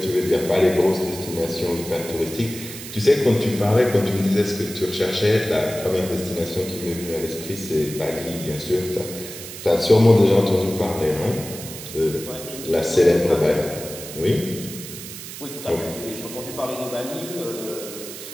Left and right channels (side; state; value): right; noise; hiss, 11 dB below the sound